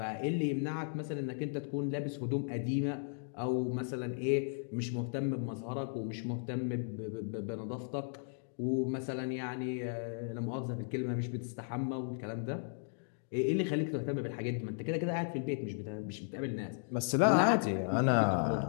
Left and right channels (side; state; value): right; silent; digital silence